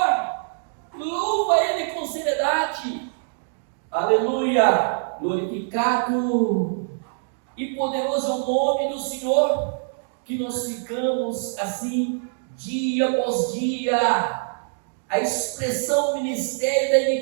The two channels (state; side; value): silent; left; digital silence